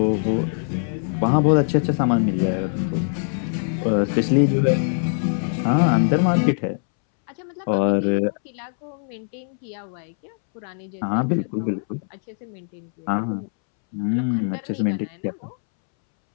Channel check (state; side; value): silent; right; 64 dB below the other